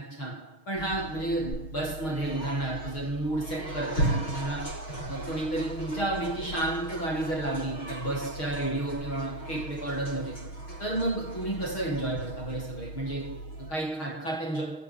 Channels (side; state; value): right; late; 6.4 ms